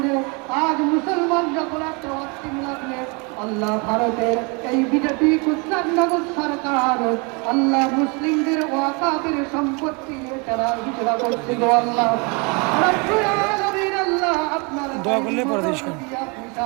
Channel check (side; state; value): left; quieter; 31.3 dB